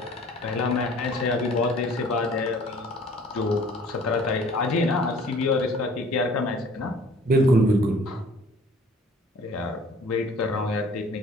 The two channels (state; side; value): normal; both; correlation 0.51